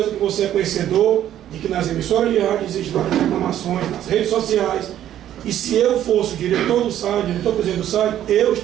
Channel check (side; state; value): left; quieter; 11.5 dB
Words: que você é conhecedor de que nas emissoras de rádio existem várias reclamações, nas redes sociais, e se eu fosse o diretor do SAI, diretor-presidente do SAI, eu